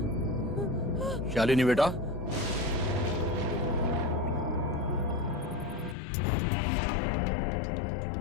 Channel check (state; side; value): drops out; right; at 6.0 s